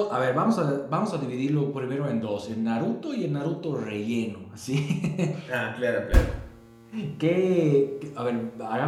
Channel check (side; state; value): both; identical; correlation 1.00